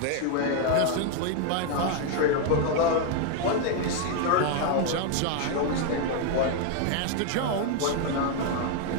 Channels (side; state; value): both; different; correlation 0.01